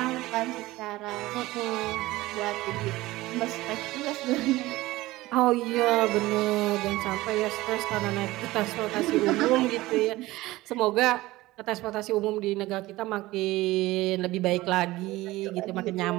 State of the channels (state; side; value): quieter; left; 18.5 dB